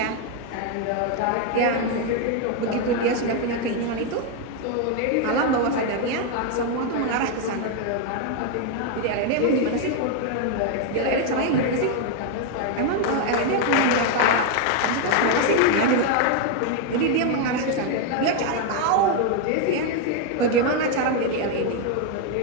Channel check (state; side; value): different; both; correlation 0.01